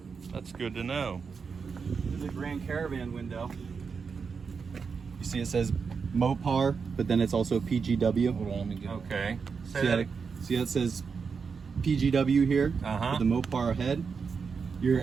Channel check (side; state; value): left; quieter; 5.6 dB